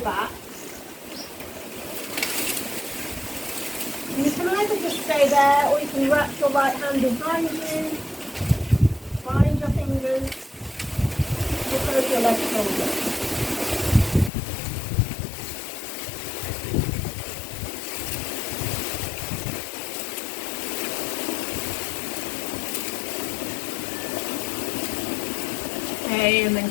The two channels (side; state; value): right; drops out; at 14.3 s